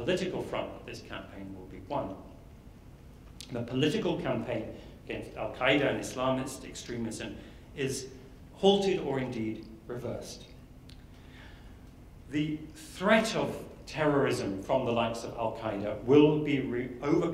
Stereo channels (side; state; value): both; identical; correlation 1.00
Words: front that this campaign will be won. The political campaign against al-Qaeda and Islamist extremism is halted or indeed reversed. The threat of terrorism from the likes of al-Qaeda will be